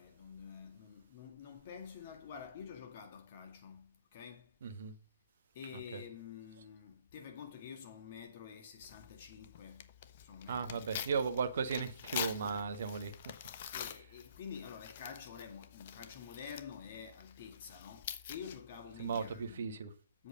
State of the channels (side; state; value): both; inverted; correlation -0.63